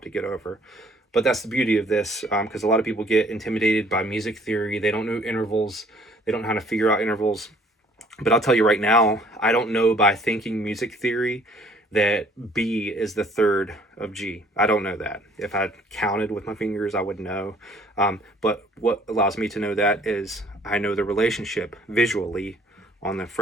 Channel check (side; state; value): both; normal; correlation 0.58